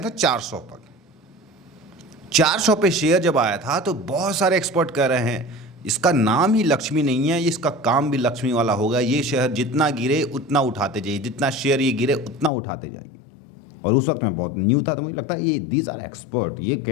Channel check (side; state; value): right; drops out; at 12.5 s